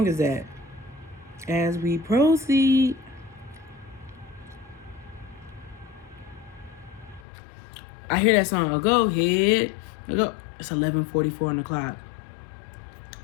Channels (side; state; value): right; drops out; at 7.2 s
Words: is that? As we proceed. I hear that song. Oh, go ahead. Go. It's 11:44 on the clock.